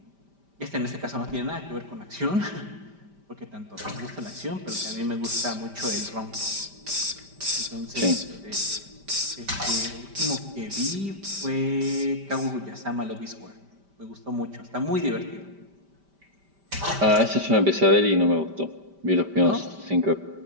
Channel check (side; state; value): left; late; 5.1 ms